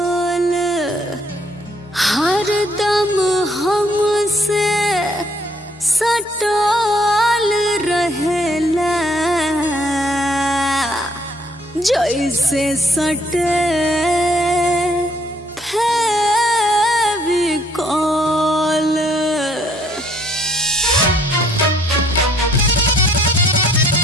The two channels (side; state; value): both; normal; correlation 0.65